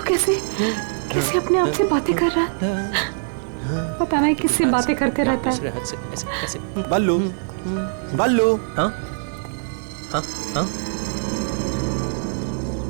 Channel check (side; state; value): left; silent; 64 dB below the other